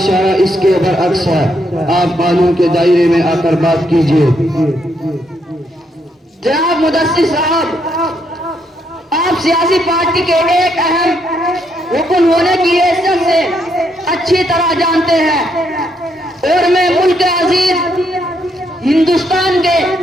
اس کے برعکس ہے۔ آپ قانون کے دائرے میں آ کر بات کیجیے۔ جناب مدثر صاحب، آپ سیاسی پارٹی کے ایک اہم رکن ہونے کی حیثیت سے اچھی طرح جانتے ہیں، اور میں ملک عزیز ہندوستان کے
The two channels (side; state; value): both; normal; correlation 0.76